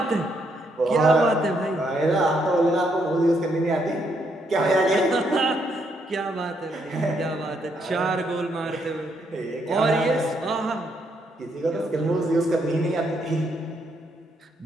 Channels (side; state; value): both; normal; correlation 0.75